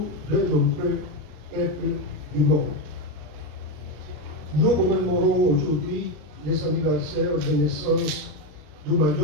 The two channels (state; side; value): late; left; 33 ms